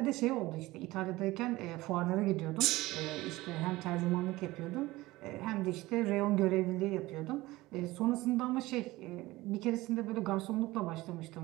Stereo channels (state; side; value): quieter; left; 19.1 dB